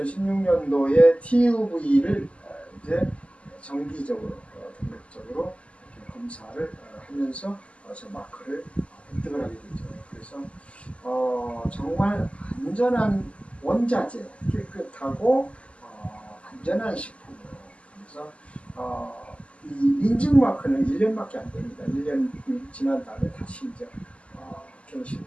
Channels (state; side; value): late; right; 0.059 ms